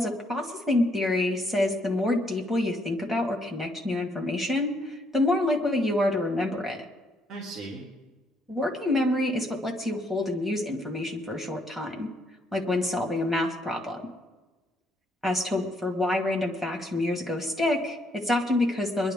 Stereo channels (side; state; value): both; normal; correlation 0.71